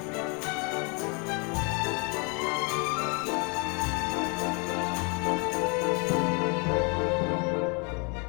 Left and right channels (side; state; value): right; quieter; 33.7 dB